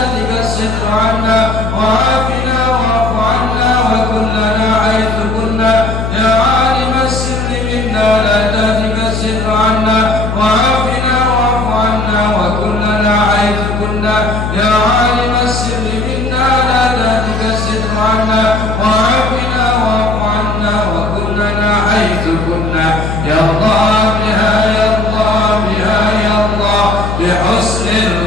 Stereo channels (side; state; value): left; noise; hum, 3 dB below the sound